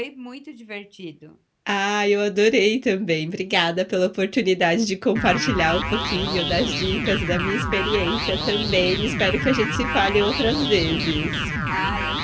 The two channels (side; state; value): both; identical; correlation 1.00